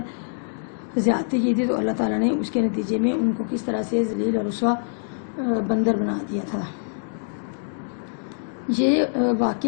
زیادتی کی تھی تو اللہ تعالیٰ نے اس کے نتیجے میں ان کو کس طرح سے ذلیل اور رسوا بندر بنا دیا تھا. یہ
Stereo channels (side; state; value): right; silent; digital silence